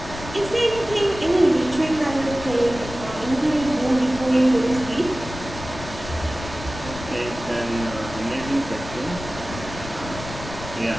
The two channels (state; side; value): noise; left; rumble, 11 dB below the sound